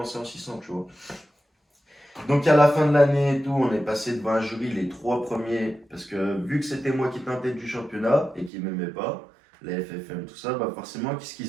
en 600, tu vois. Donc à la fin de l'année et tout, on est passé devant un jury, les trois premiers, parce que vu que c'était moi qui étais en tête du championnat et qui m'aimait pas, la FFM, tout ça, bah forcément, qu'est-ce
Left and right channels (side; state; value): left; drops out; at 8.5 s